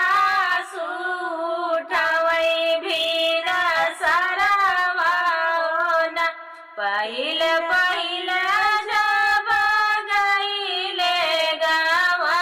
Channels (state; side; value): identical; both; correlation 1.00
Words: उठावई भीन सरवा होना। पहिल पहिल जब गईले